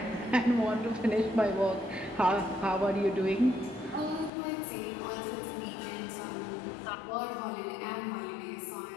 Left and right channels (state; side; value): drops out; right; at 4.3 s